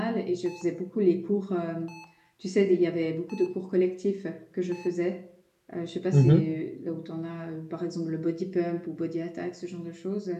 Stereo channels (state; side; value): identical; both; correlation 1.00